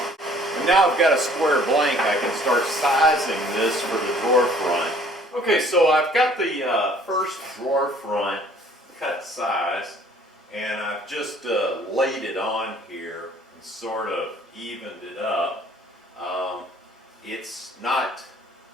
Now I've got a square blank, I can start sizing this for the drawer front. Okay, so I've got the first drawer front cut size, and I've just laid it on here and sort of evened it up. It's not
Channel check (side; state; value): both; normal; correlation 0.56